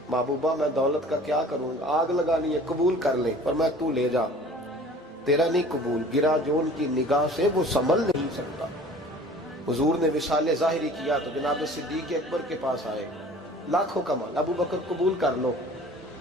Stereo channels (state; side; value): normal; both; correlation 0.47